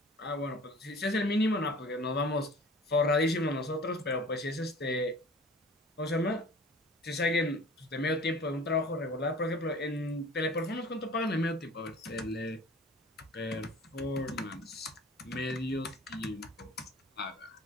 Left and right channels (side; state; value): both; normal; correlation 0.45